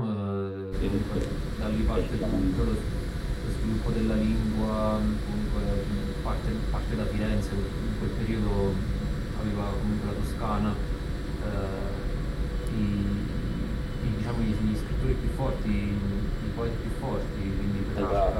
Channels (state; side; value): identical; both; correlation 1.00